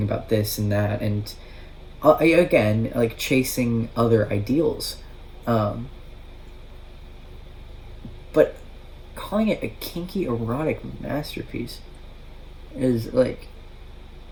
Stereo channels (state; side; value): identical; both; correlation 1.00